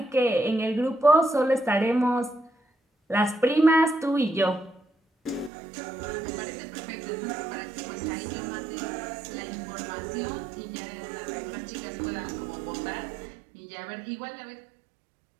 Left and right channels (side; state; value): left; drops out; at 5.5 s